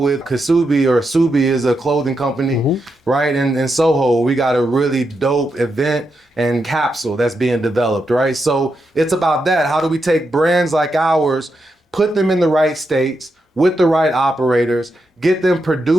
Kasubi, or Subi is a clothing company, right? In Soho, we got a really dope event and capsule that's being developed, right? So it's about that. How do we take brands like ours, put them in the right states, with the right operators, get them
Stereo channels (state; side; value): normal; both; correlation 0.85